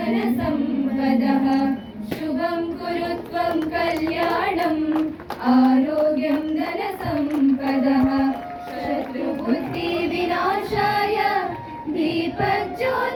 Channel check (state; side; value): identical; both; correlation 1.00